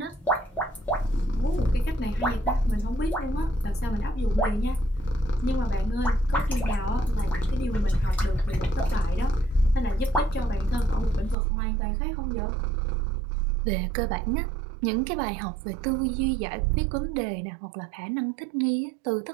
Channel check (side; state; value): left; drops out; at 11.4 s